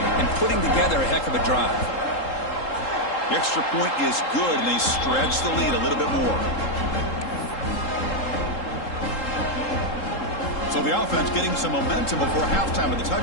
and putting together a heck of a drive. The extra point is good, and they stretch the lead a little bit more. So the offense getting some momentum before halftime of the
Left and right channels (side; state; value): right; late; 3.7 ms